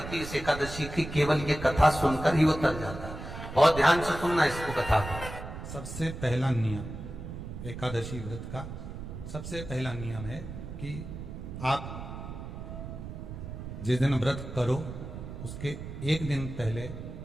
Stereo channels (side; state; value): right; noise; rumble, 9 dB below the sound